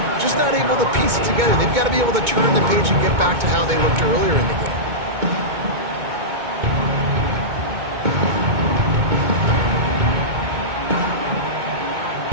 just not able to piece it together. They've got to be able to turn the page and get back to how they looked earlier in the game.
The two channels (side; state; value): left; late; 2.2 ms